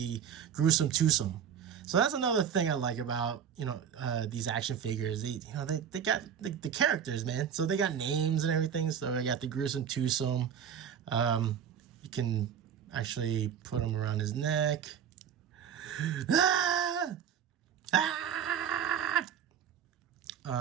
Gruesome Twosome. So that's another thing I like about, you know, these action figures. They got the characters, man. So they got names and everything. So I got the Gruesome Twosome. You can actually put them around his neck. Ah! Ah!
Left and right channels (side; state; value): left; quieter; 8.3 dB